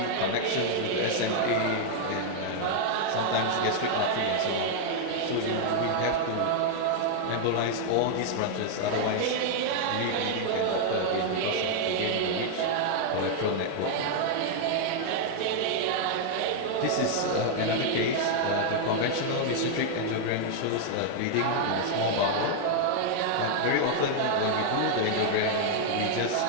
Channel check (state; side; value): different; both; correlation -0.01